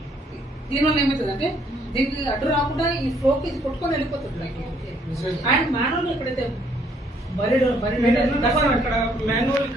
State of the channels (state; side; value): normal; both; correlation 0.66